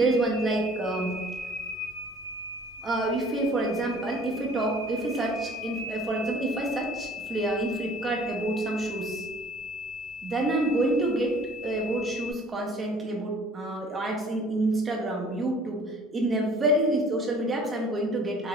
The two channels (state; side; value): normal; both; correlation 0.52